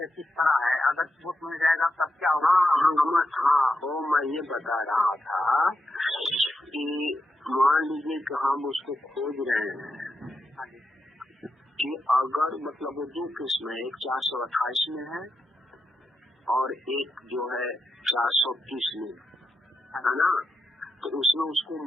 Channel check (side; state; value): both; normal; correlation 0.86